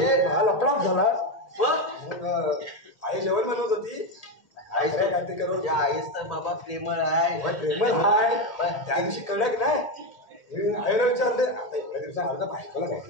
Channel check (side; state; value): right; late; 1.8 ms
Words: मला लपडाच झाला. मग आई जेवण बनवत होती आई काय काय ते करून त्या आईस तर बाबा प्रेमळ आहे. प्रेमळ हाय त्या दिवशी कडक नाही आईला विचारले आता एवढ्या दिवसात अर्धा बायकोला